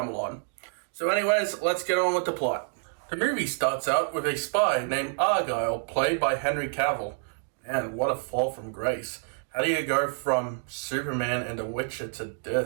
So anyways, let's get on with the plot. The movie starts out with a spy named Argylle, played by Henry Cavill. Man, what a fall from grace. How do you go from Superman and The Witcher to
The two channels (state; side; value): silent; left; digital silence